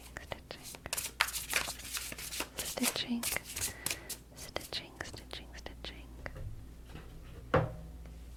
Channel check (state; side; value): identical; both; correlation 1.00